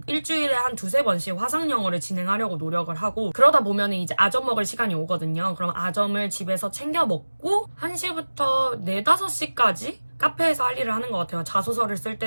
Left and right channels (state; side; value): inverted; both; correlation -1.00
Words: 일주일에 한 2-3번씩 화상영어를 진행하려고 노력을 하고 그러다 보면 이제 아점 먹을 시간이 오거든요. 그럼 아점을 집에서 챙겨 먹고 1시부터 4-5시까지 카페에서 할 일을 하는 것 같아요. 자소서를 쓸